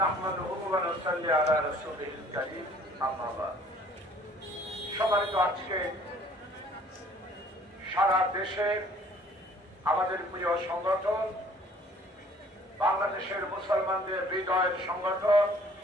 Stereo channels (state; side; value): normal; both; correlation 0.55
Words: ونصلي على رسوله الكريم أما بعد সম্মানিত আজকে সারা দেশে আমাদের প্রিয় সংগঠন বাংলাদেশের মুসলমানদের হৃদয়ের সংগঠন